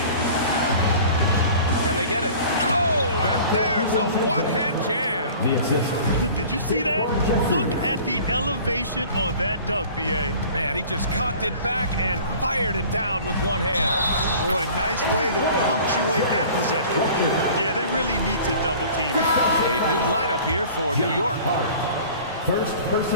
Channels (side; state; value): both; inverted; correlation -0.45